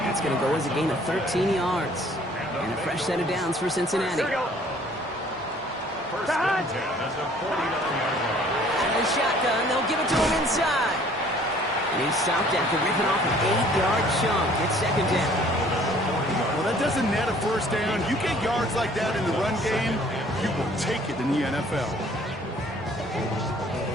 going to go as a gain of 13 yards. And a fresh set of downs for Cincinnati. Here we go. First and 10 at the 49-yard line. Out of the shotgun, they'll give it to him inside. And he's stopped after ripping off an 8-yard chunk. It's second down. Well, that doesn't net a first down. You get yards like that in the run game, you will take it in the NFL.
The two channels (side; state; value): both; normal; correlation 0.56